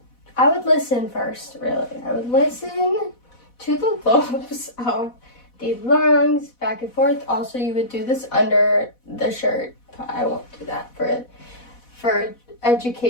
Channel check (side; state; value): right; late; 4.1 ms